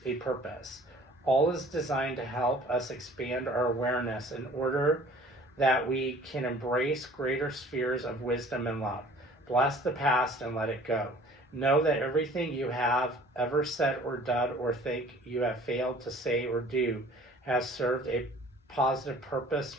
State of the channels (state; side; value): normal; both; correlation 0.51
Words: a purpose. All is designed to help us expand our awareness in order that we can embrace greater spheres of wisdom and love. Bless the past and let it go. Know that everything you have ever said or done or think you have failed to say or do has served a positive purpose